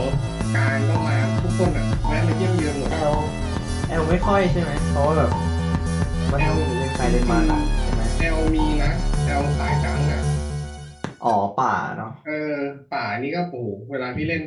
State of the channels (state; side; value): identical; both; correlation 1.00